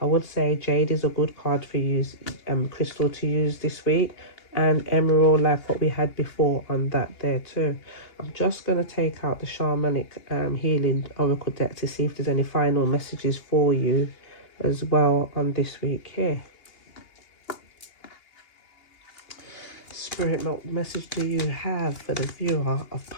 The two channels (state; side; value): late; right; 2.8 ms